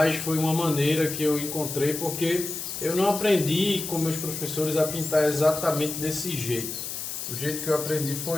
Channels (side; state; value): left; noise; hiss, 6 dB below the sound